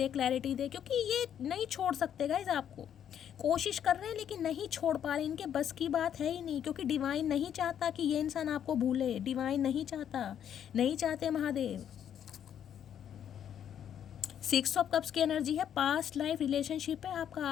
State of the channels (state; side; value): quieter; right; 9.4 dB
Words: क्लैरिटी दे, क्योंकि ये नहीं छोड़ सकते गाइस आपको। कोशिश कर रहे हैं लेकिन नहीं छोड़ पा रहे, इनके बस की बात है ही नहीं, क्योंकि डिवाइन नहीं चाहता कि ये इंसान आपको भूले। डिवाइन नहीं चाहता, नहीं चाहते महादेव। 6 ऑफ कप्स की एनर्जी है, पास्ट लाइफ रिलेशनशिप है आपका।